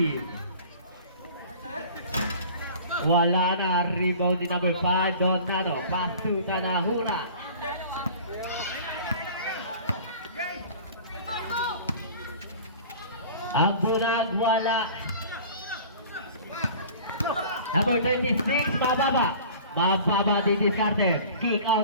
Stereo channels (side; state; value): both; inverted; correlation -0.43